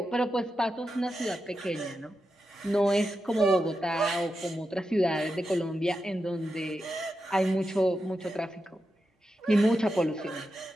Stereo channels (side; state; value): both; normal; correlation 0.88